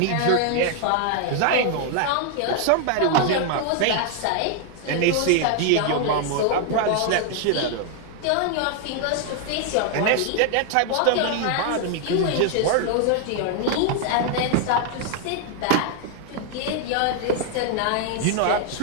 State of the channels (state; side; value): different; both; correlation 0.00